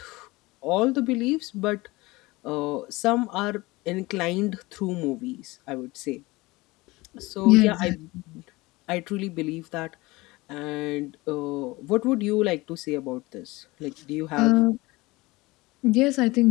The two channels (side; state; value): right; quieter; 21.7 dB